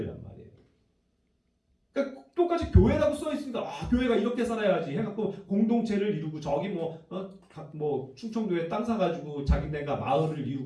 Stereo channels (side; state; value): both; identical; correlation 1.00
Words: 말이에요. 그러니까 똑같이 교회라고 써 있으니까 교회가 이렇게 살아야지 해갖고 공동체를 이루고 저기 충청도에 땅 사가지고 자기네가 마을을